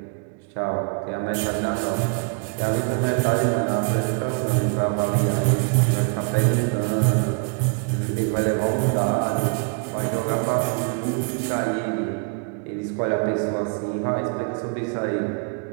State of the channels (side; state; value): left; quieter; 38.6 dB